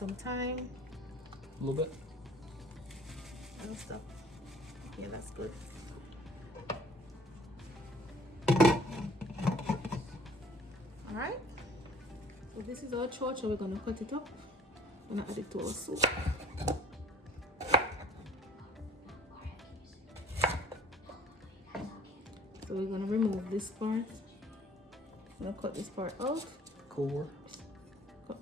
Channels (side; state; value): both; normal; correlation 0.53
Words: thyme. A little bit. And stuff. Yeah, that's good. Alright. So this is our chocha. We're gonna cut it up. I'm gonna add it to our soup. So we're gonna remove this part. I'm gonna cut this part out. Core. Cut